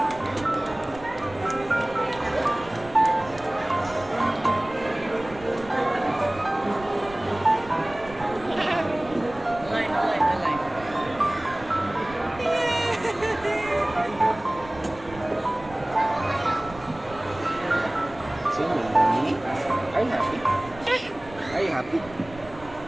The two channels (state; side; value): noise; right; rumble, 19 dB below the sound